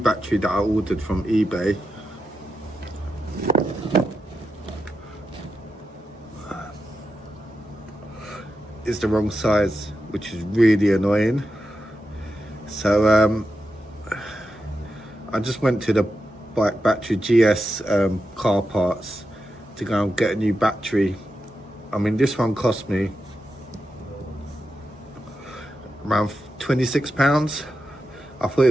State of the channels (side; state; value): both; normal; correlation 0.88